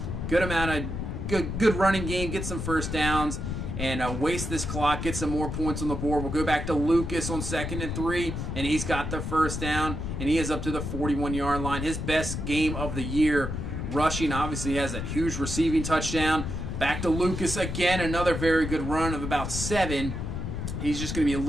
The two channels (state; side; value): noise; left; rumble, 4 dB below the sound